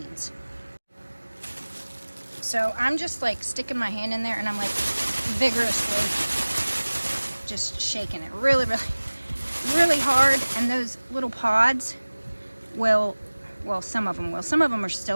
So I'm just like sticking my hand in there and I'm like vigorously just shaking it really, really, really hard. And those little pods will, well, some of them will. Some of them are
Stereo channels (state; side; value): inverted; both; correlation -1.00